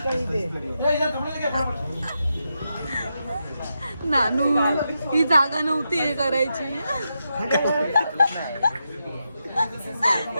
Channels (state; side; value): inverted; both; correlation -0.86